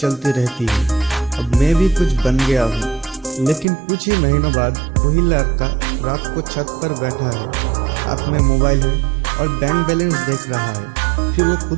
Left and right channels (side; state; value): left; drops out; at 3.7 s